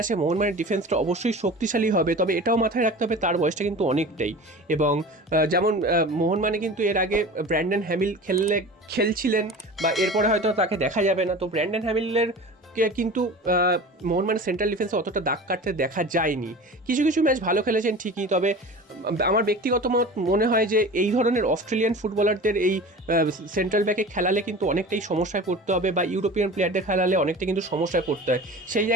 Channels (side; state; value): both; normal; correlation 0.36